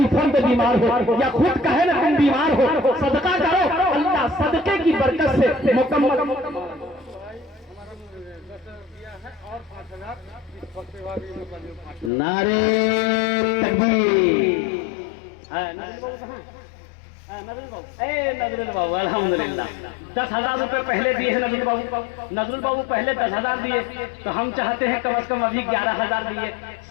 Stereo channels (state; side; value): drops out; right; at 12.1 s